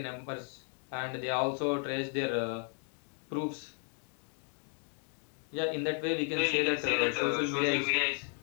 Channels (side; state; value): right; quieter; 37.0 dB